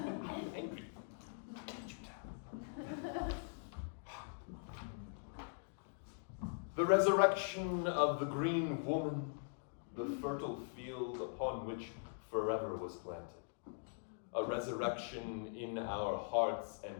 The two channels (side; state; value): right; silent; digital silence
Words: angry. Can't you tell? The resurrection of the green woman, the fertile field upon which forever was planted. A resurrection in our hearts